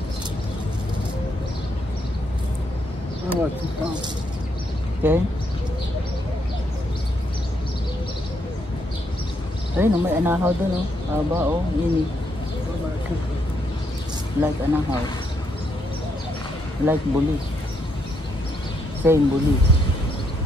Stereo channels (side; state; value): both; normal; correlation 0.76